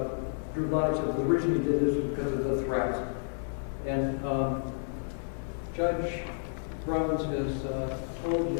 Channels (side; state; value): right; silent; 57 dB below the other